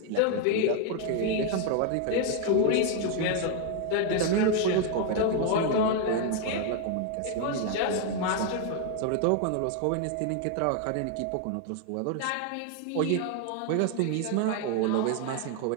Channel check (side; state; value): both; different; correlation 0.01